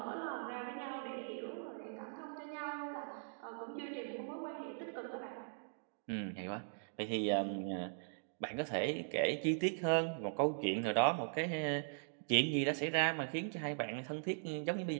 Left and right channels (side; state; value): left; silent; digital silence